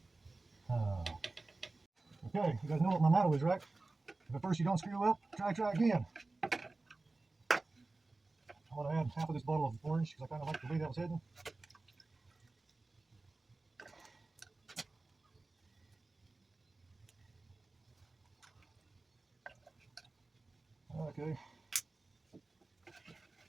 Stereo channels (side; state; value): left; quieter; 3.3 dB